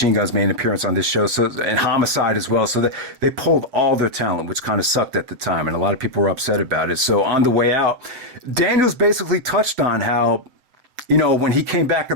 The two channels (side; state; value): left; late; 7.7 ms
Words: Guns made an appearance on this show, and Homicide as well. So they pulled all their talent, which kind of sucked at the time, and a lot of people were upset about it. So on the way out, Daniels basically touched on how, when he came back